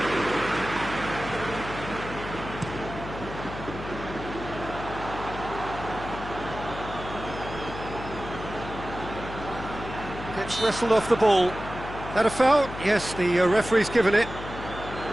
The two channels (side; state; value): left; noise; hum, 10 dB below the sound